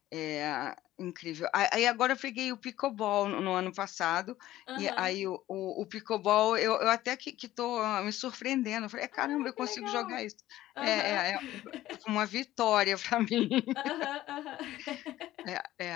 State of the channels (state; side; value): quieter; right; 14.9 dB